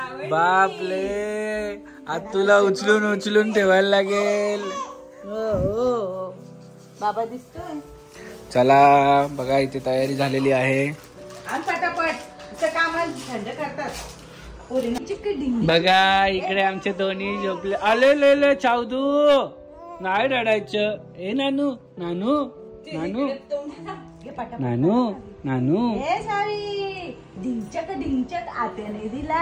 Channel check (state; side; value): identical; both; correlation 1.00